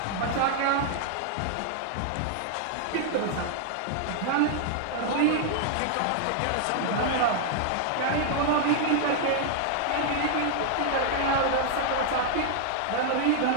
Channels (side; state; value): both; different; correlation 0.00